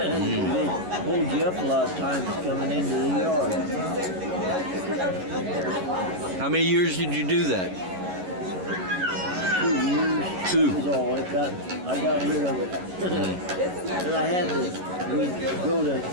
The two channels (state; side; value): late; left; 11 ms